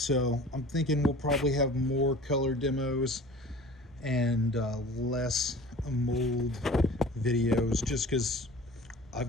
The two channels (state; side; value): normal; both; correlation 0.43